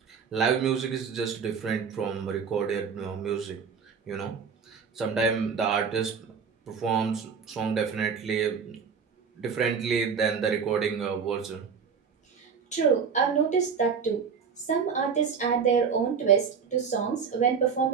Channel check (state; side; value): quieter; left; 6.2 dB